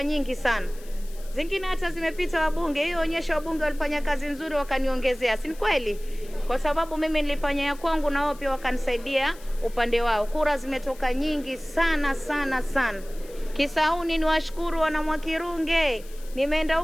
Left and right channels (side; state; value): left; noise; hiss, 22 dB below the sound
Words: nyingi sana. Zingine hata zimepita wabunge. Hiyo onyesha wabunge walifanya kazi nzuri, wakaniongezea. Si kweli? Kwa sababu mimi nilifanya ya kwangu na wao pia wakanisaidia upande wao. Kura zimetoka nyingi sana sana sana. Kisauni niwashukuru wana Mwakirunge. Nimeenda